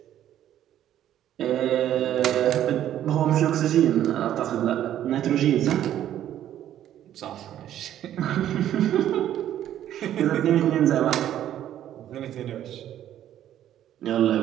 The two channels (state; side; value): quieter; left; 11.5 dB